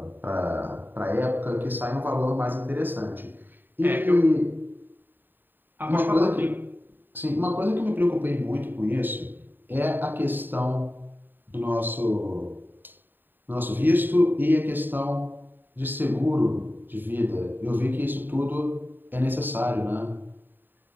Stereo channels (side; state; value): left; late; 0.092 ms